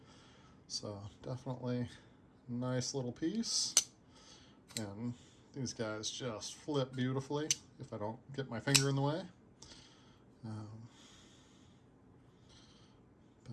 So definitely nice little piece. And these guys just flip beautifully if I don't get my finger in the way.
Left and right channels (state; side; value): identical; both; correlation 1.00